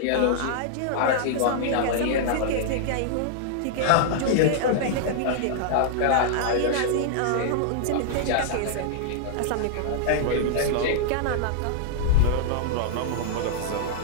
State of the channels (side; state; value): both; different; correlation -0.01